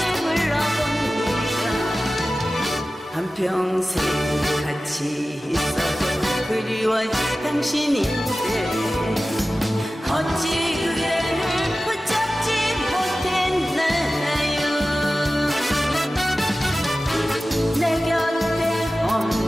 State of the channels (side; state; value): both; normal; correlation 0.95